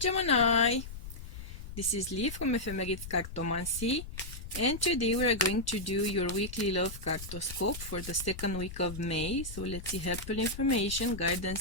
this is Lee from Ephemerid Cartomancy, and today we are going to do your weekly love cartoscope for the second week of May. So let's see helpful information,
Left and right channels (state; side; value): noise; left; rumble, 11 dB below the sound